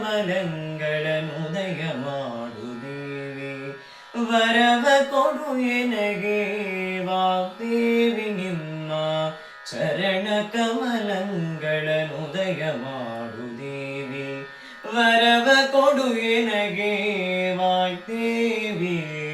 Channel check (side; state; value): both; identical; correlation 1.00